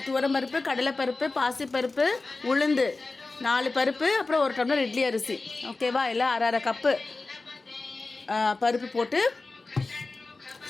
துவரம்பருப்பு, கடலைப்பருப்பு, பாசிப்பருப்பு, உளுந்து 4 பருப்பு, அப்புறம் 1 டம்ளர் இட்லி அரிசி. ஓகேவா? எல்லாம் அரை கப்பு பருப்பு போட்டு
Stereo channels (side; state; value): right; quieter; 3.5 dB